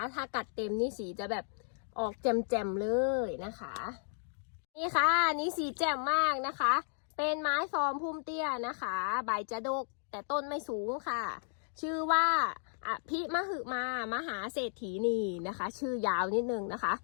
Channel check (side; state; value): right; silent; digital silence